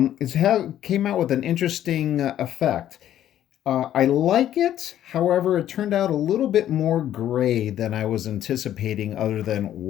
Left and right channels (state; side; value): quieter; right; 11.6 dB